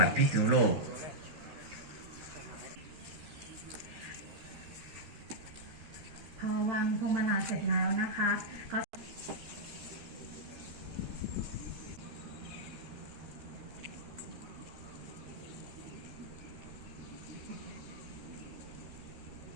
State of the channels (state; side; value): late; left; 13 ms